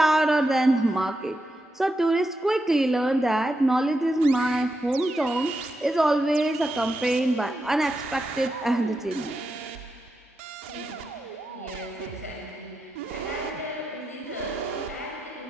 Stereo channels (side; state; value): both; normal; correlation 0.86